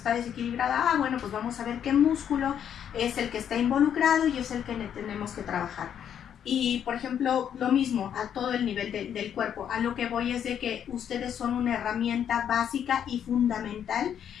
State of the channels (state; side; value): quieter; right; 9.0 dB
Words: desequilibrada. Ah, bueno, pues vamos a ver qué músculo es el que está involucrado y es el que tenemos que trabajar. Y, por ejemplo, lo mismo a todo el nivel del cuerpo. A lo que voy es de que ustedes son una herramienta básica y fundamental